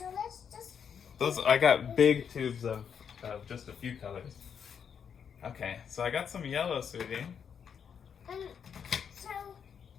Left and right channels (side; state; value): right; quieter; 7.4 dB